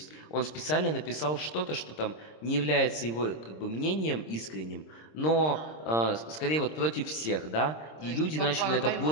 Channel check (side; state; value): right; late; 26 ms